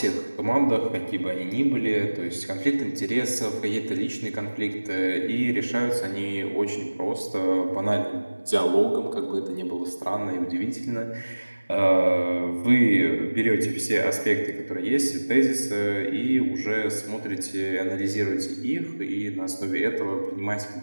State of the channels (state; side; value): inverted; both; correlation -1.00